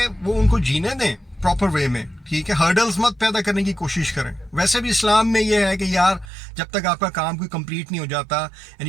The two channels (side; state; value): left; drops out; at 6.3 s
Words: वो उनको जीने दें प्रॉपर वे में, ठीक है? हर्डल्स मत पैदा करने की कोशिश करें। वैसे भी इस्लाम में ये है कि यार, जब तक आपका काम कोई कंप्लीट नहीं हो जाता and